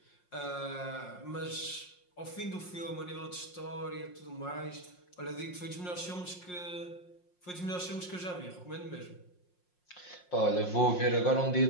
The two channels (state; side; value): late; right; 5.6 ms